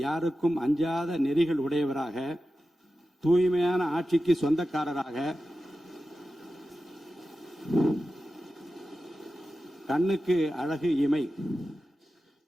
யாருக்கும் அஞ்சாத நெறிகள் உடையவராக, தூய்மையான ஆட்சிக்கு சொந்தக்காரராக, கண்ணுக்கு அழகு இமை,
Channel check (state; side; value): normal; both; correlation 0.93